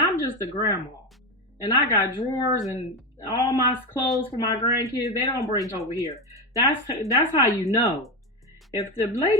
I'm just a grandma, and I got drawers and all my clothes for my grandkids, they don't bring over here. That's how you know. If the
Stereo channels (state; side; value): normal; both; correlation 0.15